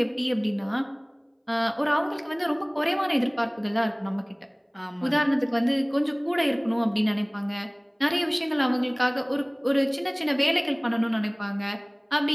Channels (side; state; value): both; identical; correlation 1.00